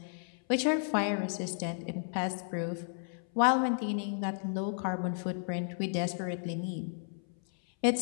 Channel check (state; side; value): silent; right; 56 dB below the other